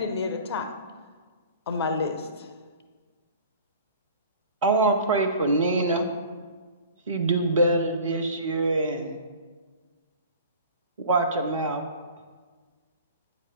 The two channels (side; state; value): both; inverted; correlation -0.42